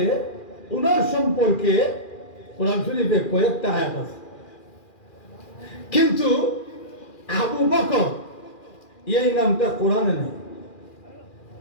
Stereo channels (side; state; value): right; late; 2.4 ms